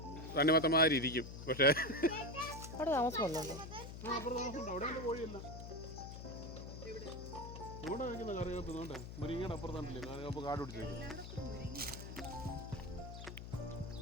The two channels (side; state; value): left; noise; hum, 10 dB below the sound